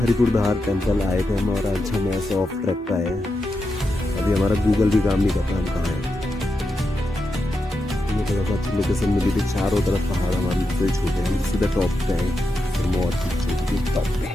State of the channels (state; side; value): normal; both; correlation 0.87